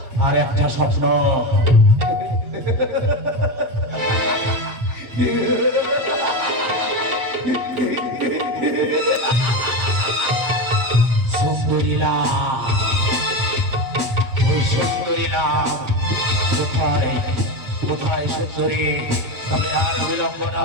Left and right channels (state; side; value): late; left; 7.8 ms